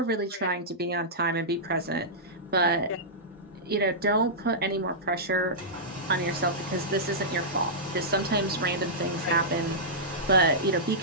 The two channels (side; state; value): both; normal; correlation -0.13